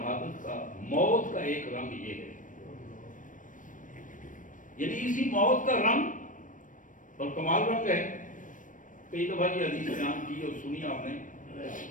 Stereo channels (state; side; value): late; right; 0.38 ms